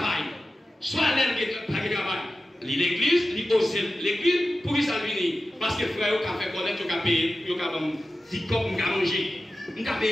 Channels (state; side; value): normal; both; correlation 0.93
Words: soit l'aide qui paye le travail, l'église, il ose l'église pour qu'il s'en vienne. Parce que frère, il a fait connaître, il a payé, il a dit comme il a mangé, il a